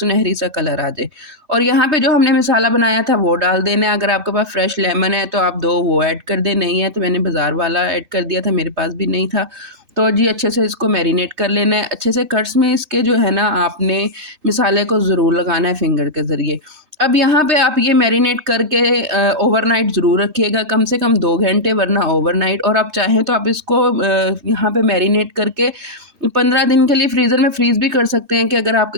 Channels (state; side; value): late; left; 2.6 ms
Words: सा कलर आ जाए। और यहाँ पे जो हमने मसाला बनाया था वो डाल देना है। अगर आपके पास फ्रेश लेमन है तो आप 2 वो ऐड कर दें, नहीं है तो मैंने बाज़ार वाला ऐड कर दिया था, मेरे पास भी नहीं था। तो जी अच्छे से इसको मैरिनेट कर लेना है। अच्छे से कट्स में इसके जो है ना आपने मसाले को ज़रूर लगाना है फिंगर के ज़रिए। अब यहाँ पे आप ये मैरिनेट करके ओवरनाइट ज़रूर रखिएगा, कम से कम 2 घंटे, वरना ओवरनाइट। और आप चाहें तो आप इसको यहाँ पे मैरिनेट करके 15 दिन के लिए फ्रीज़र में फ्रीज़ भी कर सकते हैं, कि अगर